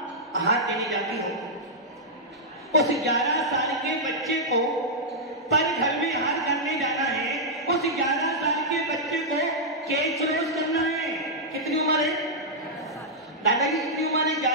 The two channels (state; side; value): normal; both; correlation -0.08